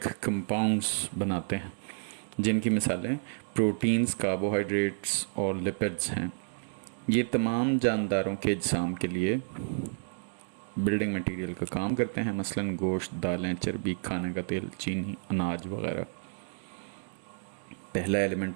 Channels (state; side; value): silent; left; digital silence